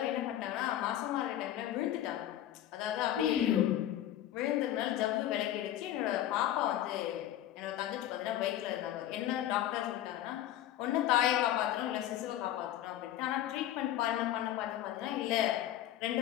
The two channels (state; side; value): quieter; right; 12.5 dB